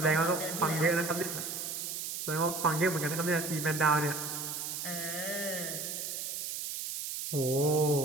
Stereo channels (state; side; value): noise; right; hiss, 5 dB below the sound